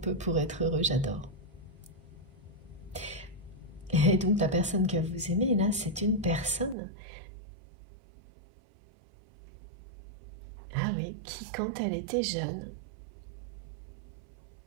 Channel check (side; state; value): left; drops out; at 6.8 s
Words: pour être heureux, j'adore. Et donc la personne que vous aimez, là, c'est une personne, ah oui, qui quand elle était jeune,